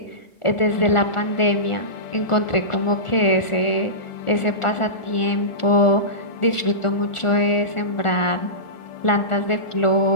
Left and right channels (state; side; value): late; right; 1.4 ms